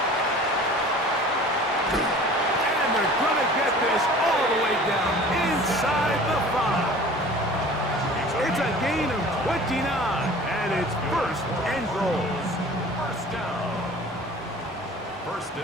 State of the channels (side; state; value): both; normal; correlation 0.44